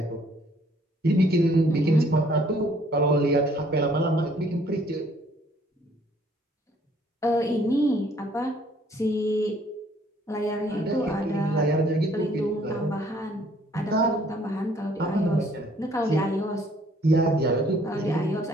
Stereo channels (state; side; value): normal; both; correlation 0.61